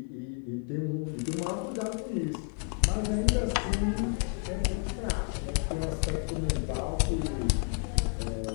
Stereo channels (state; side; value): quieter; right; 36.7 dB